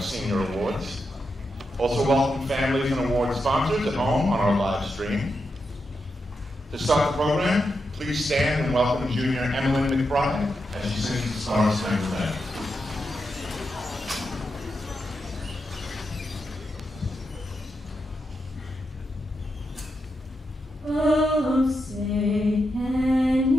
senior awards. Also welcome families and award sponsors at home on our live stream. To start the program, please stand and welcome junior Emily McBride as she sings the Star Spangled Banner. Oh, say, can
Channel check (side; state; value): both; normal; correlation 0.86